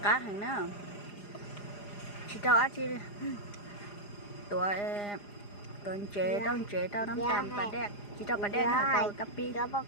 cá hàng nó chỉ tao ăn chi tuổi tuần chế tao nắm tạm bà đẻ chỉ tao bà đẻ hả tao cà pi đó bắt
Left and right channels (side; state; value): right; late; 4.9 ms